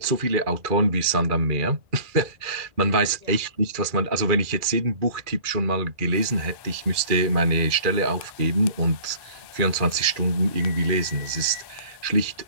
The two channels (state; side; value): late; left; 2.3 ms